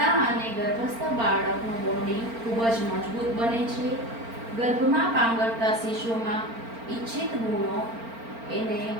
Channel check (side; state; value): left; late; 4.4 ms